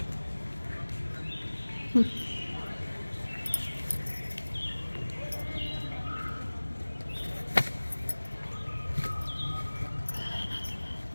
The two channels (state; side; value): inverted; both; correlation -1.00